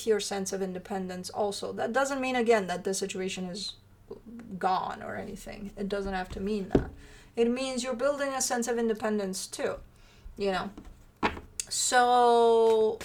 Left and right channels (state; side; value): identical; both; correlation 1.00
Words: your sense of independence also. That doesn't mean, again, that the situation is gone or anything. It doesn't have to mean that. It means you're building a sense of independence too. So,